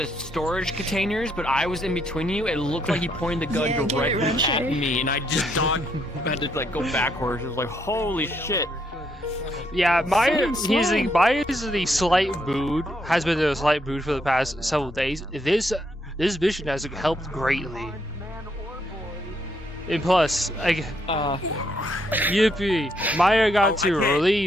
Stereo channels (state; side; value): normal; both; correlation 0.74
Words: storage containers, but I was in between you. It looked like he pointed the gun directly at me, and I just had to like go backwards. It was like, holy shit. Yeah, Maya's the slight mood, has been in a slight mood for the past several days. This mission has helped greatly. And plus, yippee, Maya got to